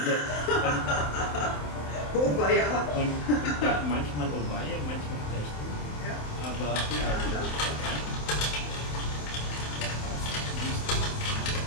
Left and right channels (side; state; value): right; late; 27 ms